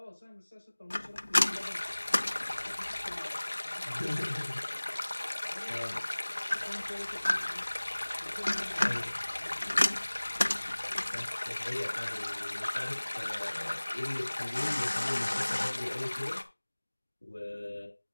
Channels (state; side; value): inverted; both; correlation -1.00